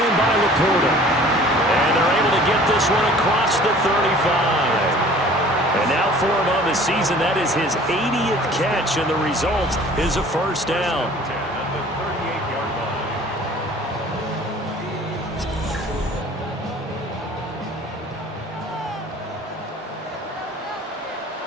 by Laporta. And they're able to get this one across the 35. And now for him on the season, that is his 80th catch, and the result is a first down.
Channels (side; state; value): both; normal; correlation 0.49